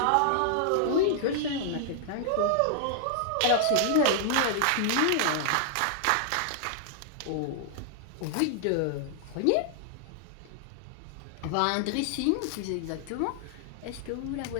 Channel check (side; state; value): both; different; correlation -0.01